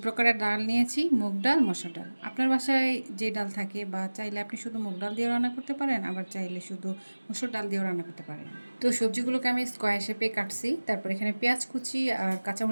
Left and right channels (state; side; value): inverted; both; correlation -1.00